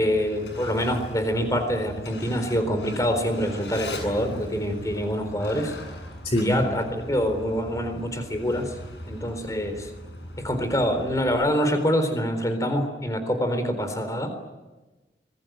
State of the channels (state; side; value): normal; both; correlation 0.65